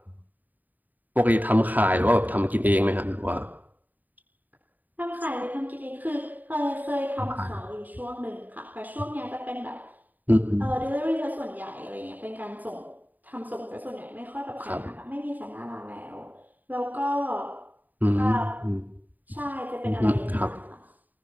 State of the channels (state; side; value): late; left; 0.084 ms